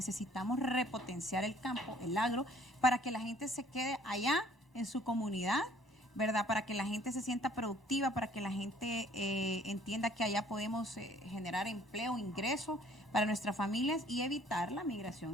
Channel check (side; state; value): both; normal; correlation 0.58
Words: repotenciar el campo, el agro, para que la gente se quede allá en su comunidad, ¿verdad? Para que la gente se sienta productiva, para que la gente entienda que allá podemos generar empleo, ingreso para nuestras familias y evitar la